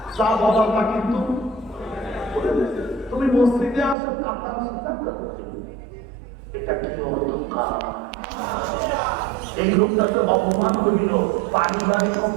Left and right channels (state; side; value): drops out; left; at 4.0 s